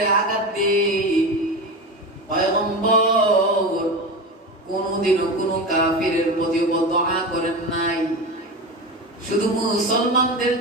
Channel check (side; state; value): both; normal; correlation 0.24